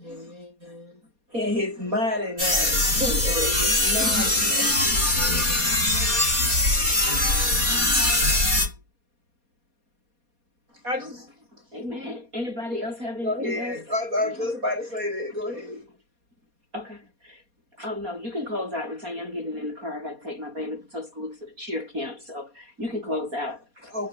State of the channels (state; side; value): late; left; 4.2 ms